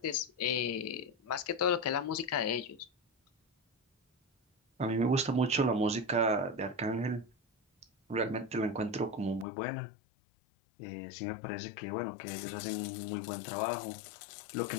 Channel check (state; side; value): drops out; right; at 9.5 s